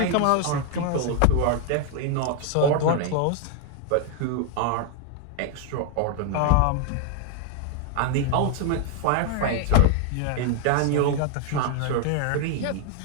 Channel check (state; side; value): different; both; correlation 0.00